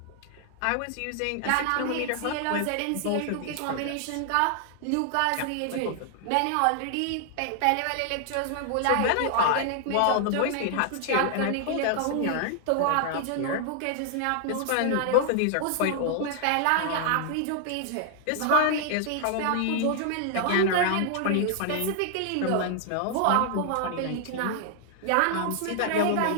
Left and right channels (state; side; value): different; both; correlation 0.00